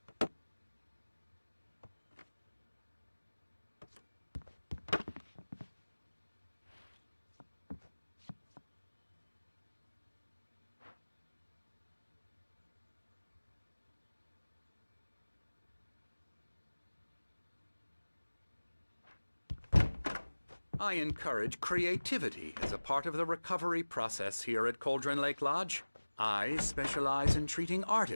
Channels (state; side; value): inverted; both; correlation -1.00